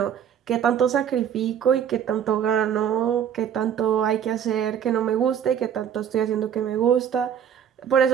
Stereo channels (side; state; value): left; quieter; 8.9 dB